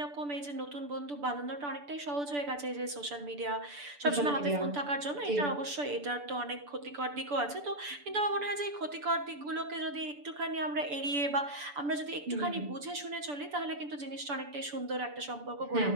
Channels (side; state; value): left; late; 6.9 ms